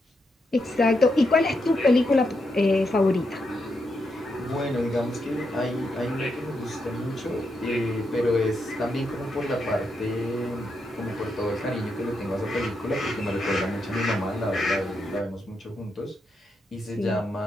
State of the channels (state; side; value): normal; both; correlation 0.82